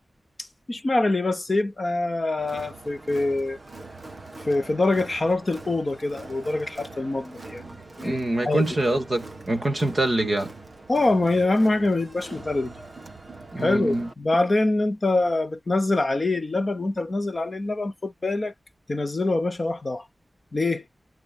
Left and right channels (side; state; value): both; normal; correlation 0.95